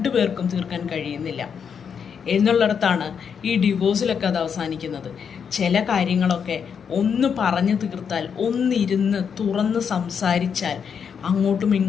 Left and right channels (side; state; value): right; quieter; 7.0 dB